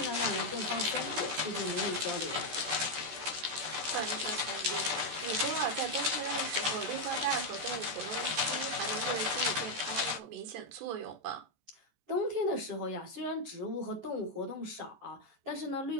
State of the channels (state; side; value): late; left; 14 ms